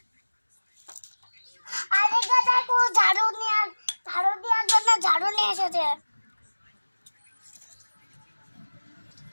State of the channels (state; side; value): inverted; both; correlation -1.00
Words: আরেকটা দেখো ঝাড়ু দেওয়ার জন্য ঝাড়ু নিয়ে এসেছে।